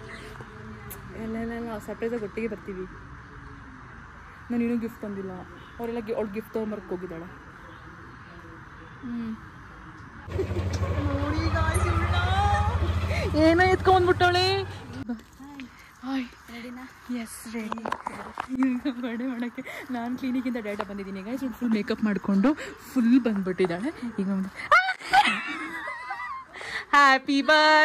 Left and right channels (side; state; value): both; identical; correlation 1.00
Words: ಎಲ್ಲ ಸರ್ಪ್ರೈಸಾಗಿ ಒಟ್ಟಿಗೆ ಬರ್ತೀವಿ. ನಾನು ಇನ್ನೂ ಗಿಫ್ಟ್ ತಂದಿಲ್ಲ, ಅವರೆಲ್ಲ ಅವ್ಳು ಗಿಫ್ಟ್ ತೊಗೊಂಬರ್ಕ್ ಹೋಗಿದ್ದಾಳೆ. ಏನೋ ಎತ್ಕೊಂಡ್ಬಿಟ್ಟವಳೆ. Yes ready. ಈಗ ಬರ್ಡೇ ಮಾಡೋಕ್ಕೆ ನಾನು ಕ್ಲಿನಿಕಿಂದ ಡೇಟಾ ಬಂದಿದ್ದೀನಿ. ಈಗ ಫುಲ್ ಮೇಕಪ್ ಮಾಡಿಕೊಂಡು ಫುಲ್ ಬಂದ್ಬಿಟ್ಟಿದ್ದಾಳೆ. ಈಗ ಒಂದು happy